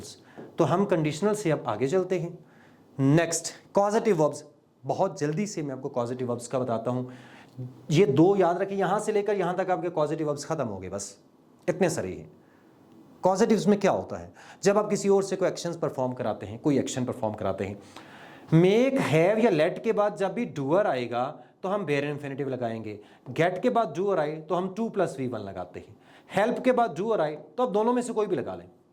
तो हम कंडीशनल से अब आगे चलते हैं। Next, causative verbs. बहुत जल्दी से मैं आपको कॉजेटिव वर्ब्स का बताता हूं। ये दो याद रखिए, यहां से लेकर यहां तक आपके कॉजेटिव वर्ब्स खत्म हो गए, बस इतने सारे ही। कॉजेटिव्स में क्या होता है? जब आप किसी और से कोई एक्शंस परफॉर्म कराते हैं, कोई एक्शन परफॉर्म कराते हैं, मेक, हैव या लेट के बाद जब भी डूअर आएगा तो हम बेयर इन्फिनेटिव लगाएंगे। गेट के बाद डूअर आए तो हम 2 + V1 लगाते हैं। हेल्प के बाद डूअर आए तो अब दोनों में से कोई भी लगा लें।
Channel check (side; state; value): both; identical; correlation 1.00